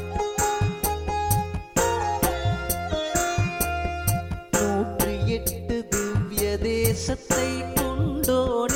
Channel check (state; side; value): identical; both; correlation 1.00